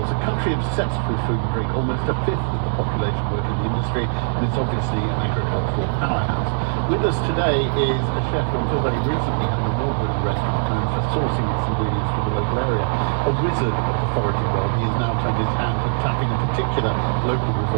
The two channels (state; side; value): silent; left; digital silence